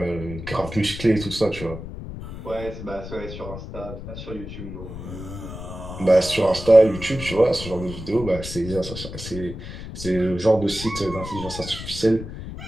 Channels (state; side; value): noise; left; rumble, 10 dB below the sound